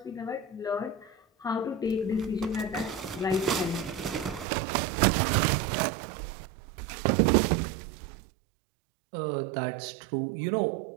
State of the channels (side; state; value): left; drops out; at 4.5 s